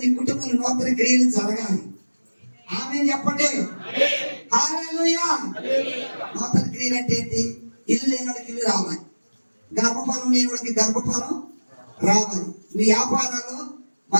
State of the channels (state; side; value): inverted; both; correlation -1.00